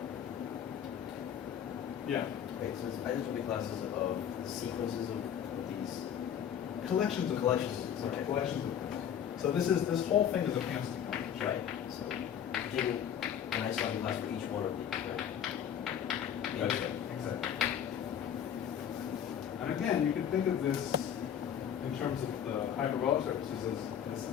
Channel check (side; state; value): right; quieter; 9.0 dB